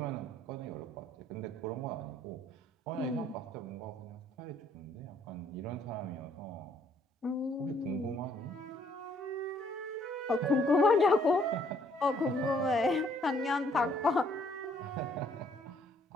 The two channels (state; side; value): normal; both; correlation 0.66